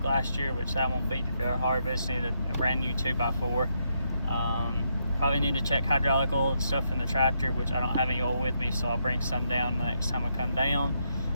last year, which that won't be very hard, but just need a brand new 2x4. Probably need to check hydraulic oil and stuff in the tractor, which I don't have any oil with me, so I'll bring some down the next time I come down,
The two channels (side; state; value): both; inverted; correlation -0.78